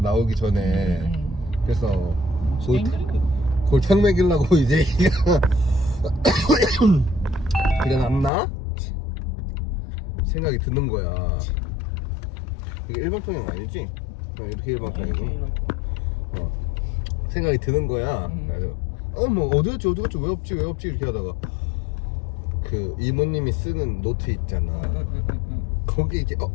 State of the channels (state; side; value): drops out; right; at 8.3 s